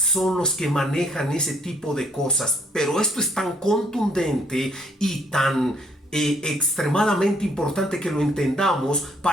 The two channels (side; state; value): both; normal; correlation 0.66